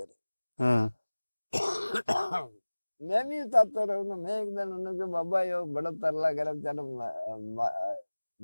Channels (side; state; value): both; inverted; correlation -1.00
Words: ਹਾਂ मैं भी उतारता रहूंगा मैं एक दिन उन्होंने कहा बाबा यो बड़ा तरला कर बेचारा